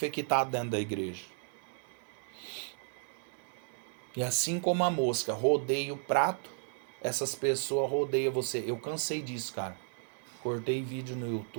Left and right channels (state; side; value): silent; left; digital silence